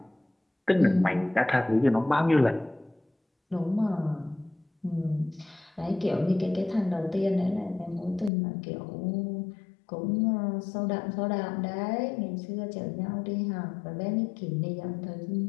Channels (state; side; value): drops out; right; at 8.3 s